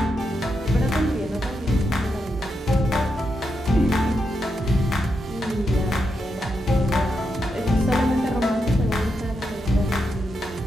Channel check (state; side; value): normal; both; correlation 0.84